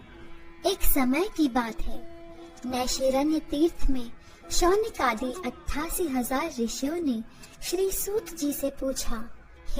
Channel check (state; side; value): identical; both; correlation 1.00